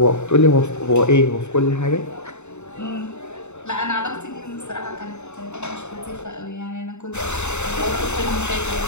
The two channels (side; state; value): right; late; 0.82 ms